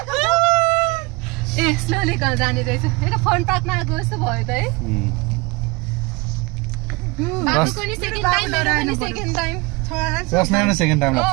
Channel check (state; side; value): quieter; left; 25.9 dB